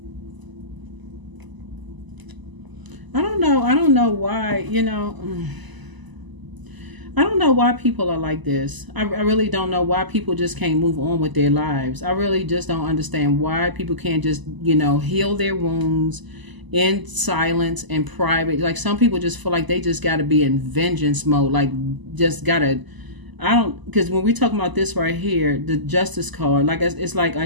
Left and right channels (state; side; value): late; left; 1.0 ms